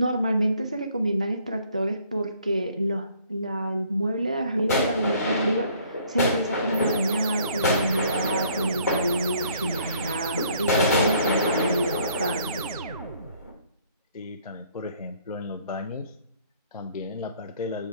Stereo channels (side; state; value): both; inverted; correlation -0.61